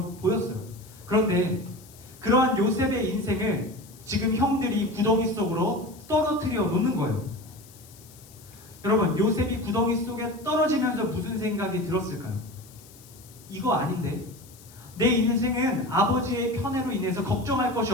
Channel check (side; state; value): left; noise; hiss, 23 dB below the sound